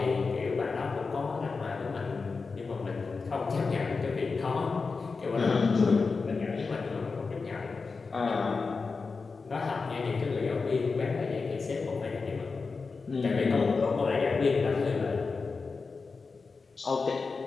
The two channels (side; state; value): right; quieter; 4.5 dB